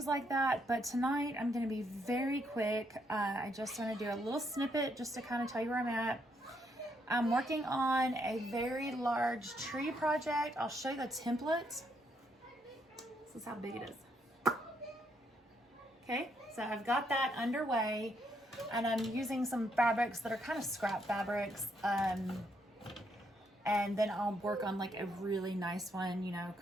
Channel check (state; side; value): normal; both; correlation 0.75